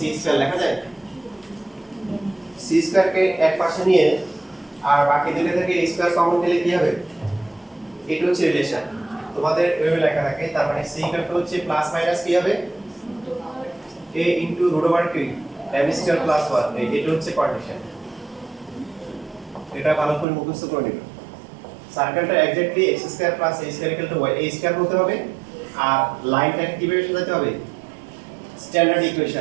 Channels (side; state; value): left; drops out; at 20.2 s